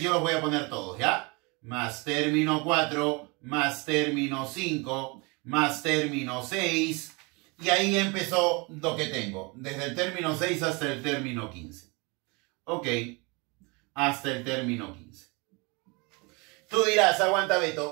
los voy a poner todos, ¿ya? Más término 4, más término 5, más término 6, y ahí empezó lo que tengo, desde el término 6 hasta el término 15. Ok, hasta el término 15. Tú dirás, aguanta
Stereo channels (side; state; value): left; quieter; 28.5 dB